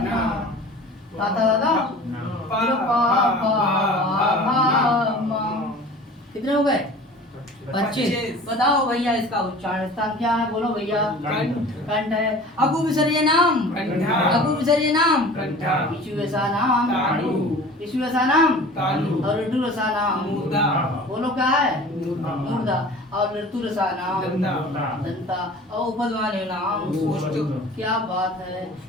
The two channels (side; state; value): both; normal; correlation 0.42